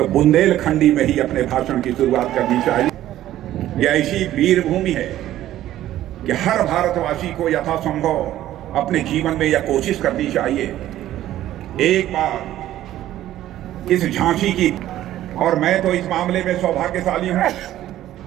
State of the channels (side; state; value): left; quieter; 13.3 dB